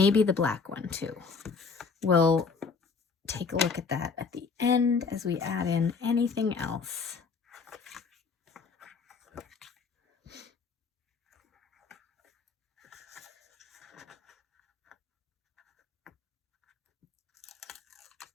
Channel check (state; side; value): quieter; right; 5.0 dB